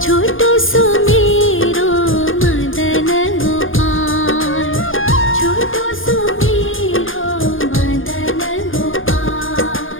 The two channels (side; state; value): right; late; 0.58 ms